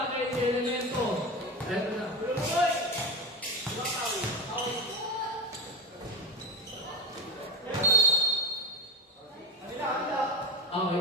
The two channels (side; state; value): both; normal; correlation 0.21